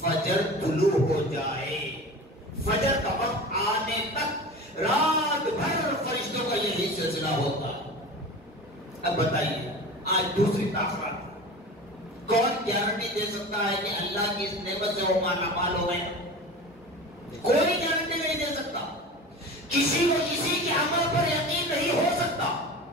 فجر طلوع ہو جائے، فجر کا وقت آنے تک رات بھر فرشتوں کا یہی سلسلہ ہوتا ہے۔ اب بتائیے آج دوسری تاخرات کون گارنٹی دے سکتا ہے کہ اللہ کی اس نعمت سے وہ مالا مال ہو گئے؟ کوئی گارنٹی نہیں دے سکتا، کسی کو کسی کے عمل پر یقین نہیں ہو سکتا۔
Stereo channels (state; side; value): normal; both; correlation 0.33